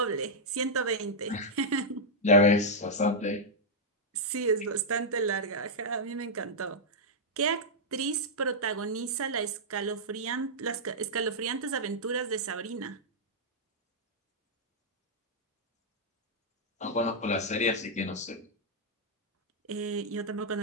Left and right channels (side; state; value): both; normal; correlation -0.07